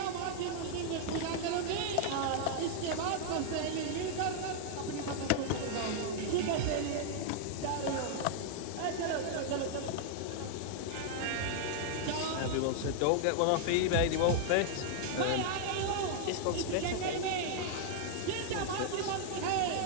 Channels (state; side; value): different; both; correlation -0.01